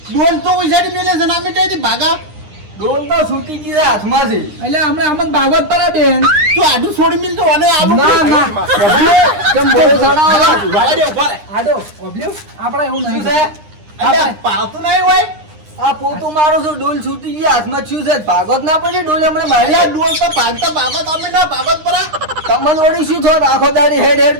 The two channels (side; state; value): left; late; 9.8 ms